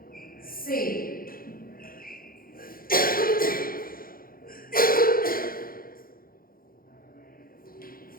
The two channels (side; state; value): right; late; 0.42 ms